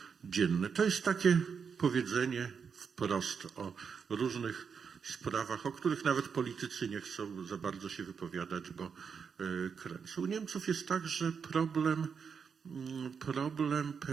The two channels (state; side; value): quieter; left; 6.3 dB